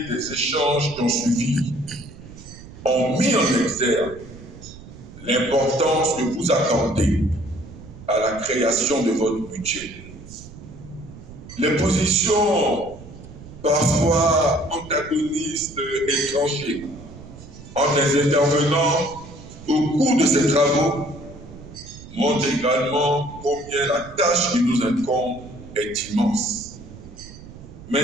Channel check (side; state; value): right; noise; rumble, 17 dB below the sound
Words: des échanges qui ont suivi ont mis en exergue l'importance que vous accordez à la création de votre budget. Les positions parfois antagonistes et tranchées entre les intervenants au cours de ces travaux montrent également combien la tâche qui nous incombe est immense.